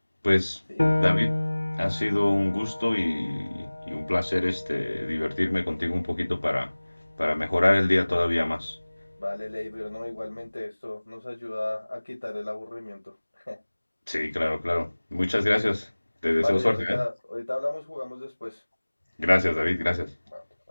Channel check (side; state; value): both; inverted; correlation -1.00